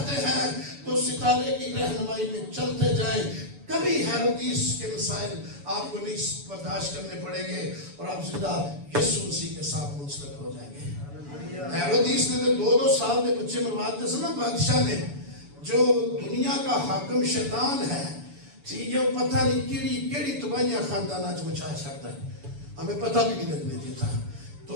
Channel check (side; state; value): left; late; 7.0 ms